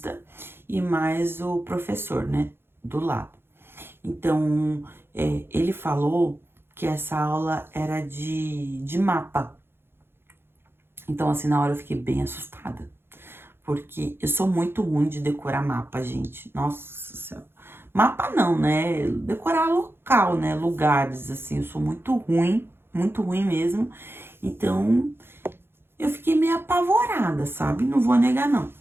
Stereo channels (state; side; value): late; left; 0.11 ms